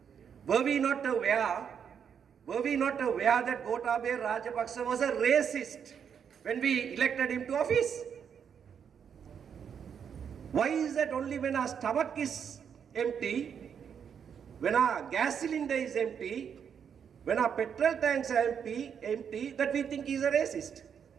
Were we not aware that Gotabaya Rajapaksa was a racist when we elected him to office? Why is that only when our stomach is empty, when our gas cylinder is empty, when our petrol tanks are empty, that we think he's a racist?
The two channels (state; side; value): quieter; left; 7.6 dB